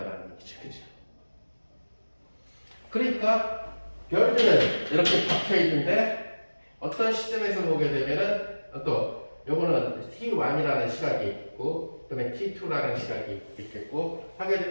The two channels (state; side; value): inverted; both; correlation -1.00